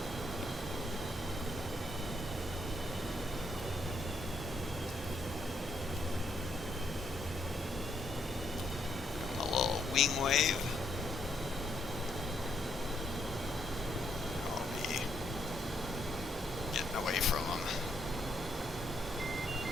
Wing wave. I'll be getting away from them.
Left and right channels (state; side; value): normal; both; correlation 0.75